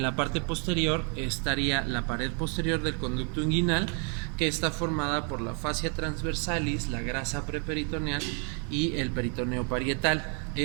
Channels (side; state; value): left; quieter; 39.5 dB